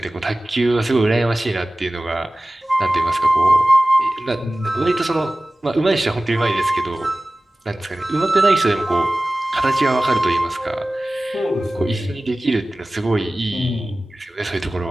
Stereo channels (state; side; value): normal; both; correlation 0.97